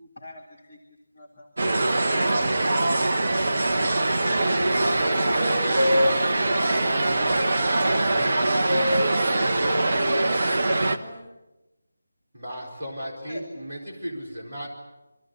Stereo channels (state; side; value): inverted; both; correlation -0.94